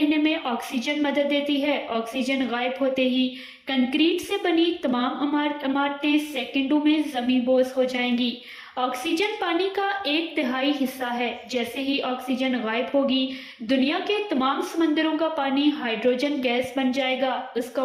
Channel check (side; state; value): both; identical; correlation 1.00